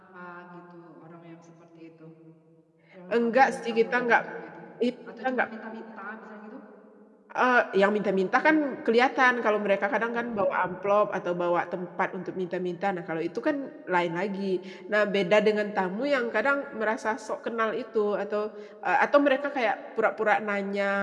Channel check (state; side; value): identical; both; correlation 1.00